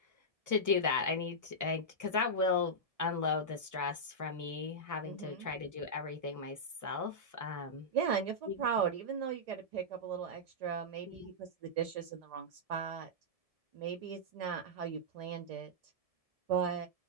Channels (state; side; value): late; left; 1.7 ms